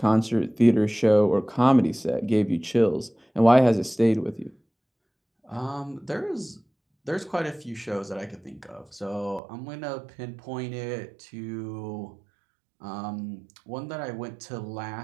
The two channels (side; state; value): left; drops out; at 9.4 s